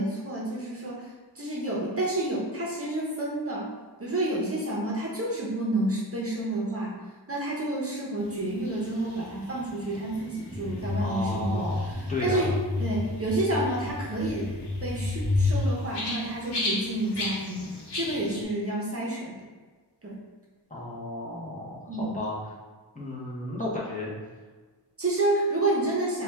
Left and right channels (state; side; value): normal; both; correlation 0.33